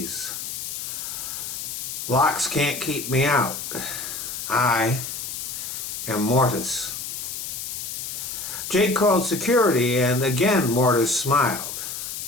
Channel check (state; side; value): noise; left; hiss, 6 dB below the sound